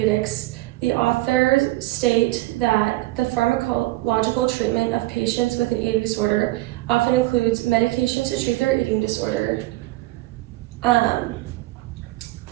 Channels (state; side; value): quieter; left; 19.0 dB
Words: the authors state that the pharmacological treatment of patients with an eating disorder often includes medications to treat their eating disorder,